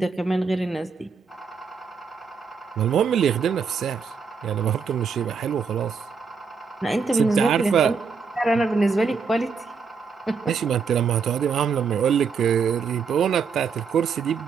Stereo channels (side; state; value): left; quieter; 5.5 dB